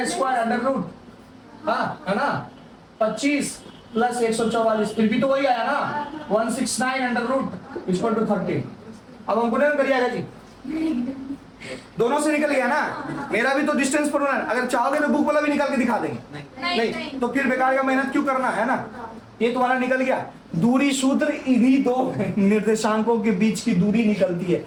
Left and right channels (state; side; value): identical; both; correlation 1.00